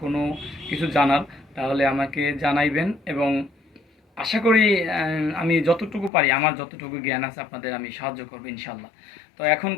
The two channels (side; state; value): right; drops out; at 6.1 s